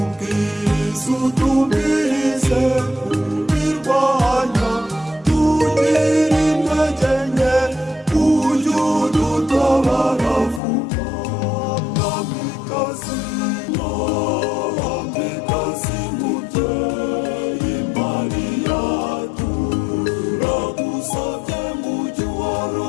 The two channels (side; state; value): right; drops out; at 10.6 s